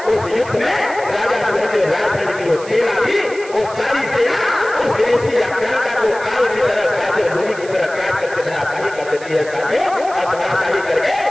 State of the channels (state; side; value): noise; right; hiss, 18 dB below the sound